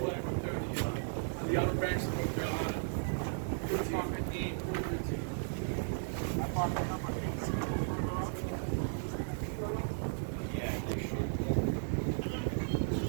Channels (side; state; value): left; silent; digital silence